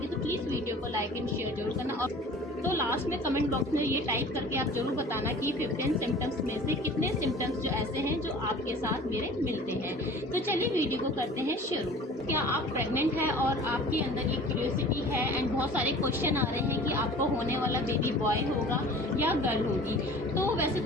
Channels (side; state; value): both; normal; correlation 0.44